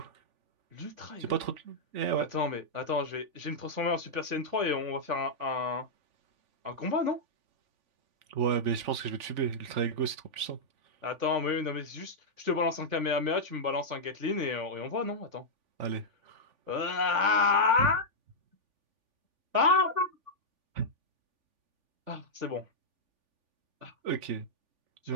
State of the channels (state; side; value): late; left; 3.5 ms